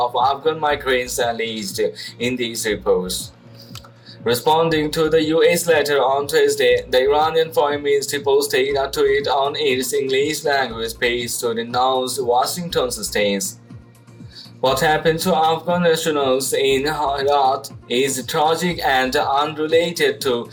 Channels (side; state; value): both; identical; correlation 1.00